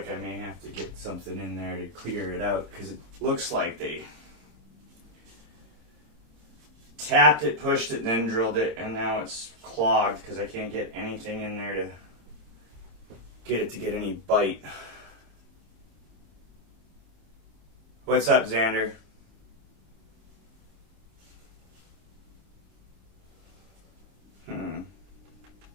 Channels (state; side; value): late; left; 26 ms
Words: I may have to get something in there to clear it out because it looks like they tapped it, pushed it, then drilled it, and now it's clogged because I can't get anything in there to get any bite. What's up, Xander? Let